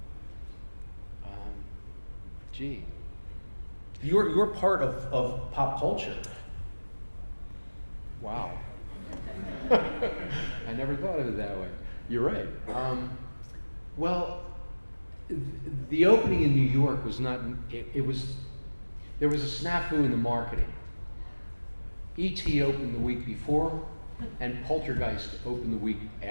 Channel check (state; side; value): inverted; both; correlation -1.00